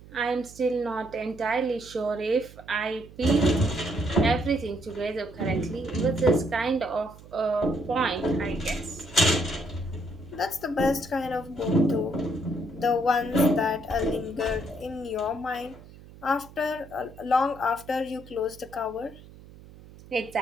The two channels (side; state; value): right; noise; hum, 20 dB below the sound